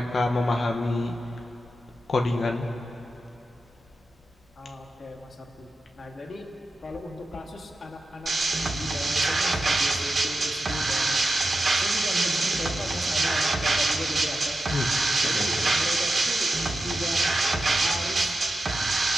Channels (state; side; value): normal; both; correlation 0.91